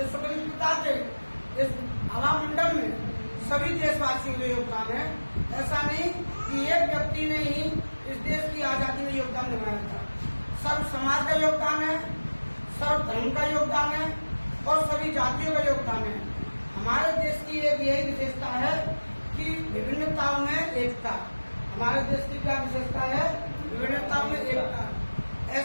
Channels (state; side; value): inverted; both; correlation -1.00